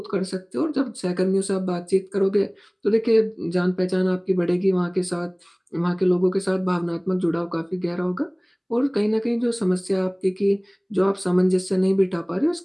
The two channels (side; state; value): both; identical; correlation 1.00